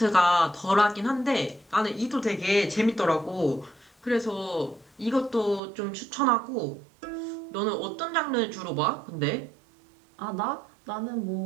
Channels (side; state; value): left; drops out; at 5.6 s